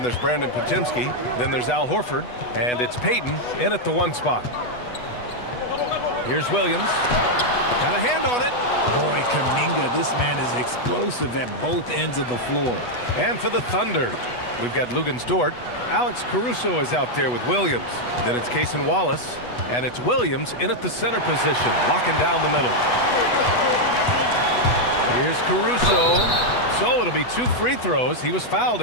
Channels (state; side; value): late; right; 8.2 ms